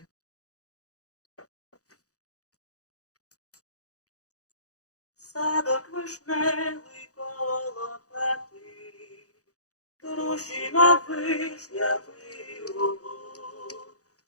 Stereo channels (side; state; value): right; late; 0.66 ms